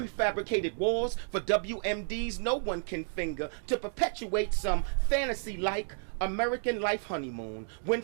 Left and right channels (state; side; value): silent; left; digital silence